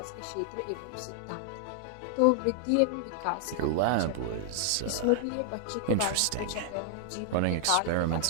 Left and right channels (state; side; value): different; both; correlation -0.01